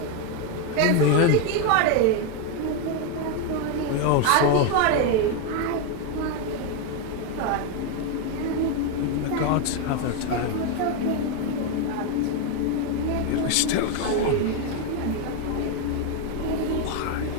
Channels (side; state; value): both; different; correlation 0.02